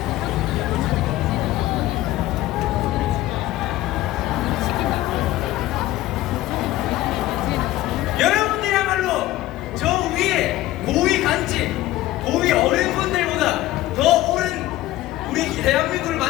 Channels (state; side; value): quieter; right; 15.9 dB